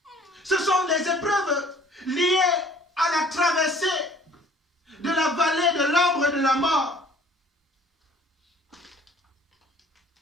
Ce sont les épreuves liées à la traversée de la vallée de l'ombre de la mort.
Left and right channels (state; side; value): normal; both; correlation 0.54